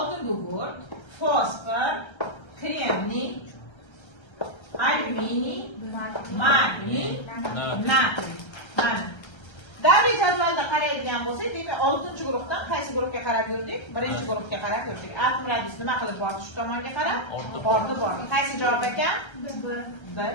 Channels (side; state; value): right; late; 1.3 ms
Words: gugurt, fosfor, kremniy, alyuminiy, magniy, natriy. Mana. Davriy jadvalda qaraydigan bo'lsak, demak 6-chi guruhdan qaysi guruhga qarab yurdik? 1-chi guruhga qarab yurdik. Atom radiusi nima qilib bordi shu tomonga qarab? Ortib bordi. Qaysi javob ekan? B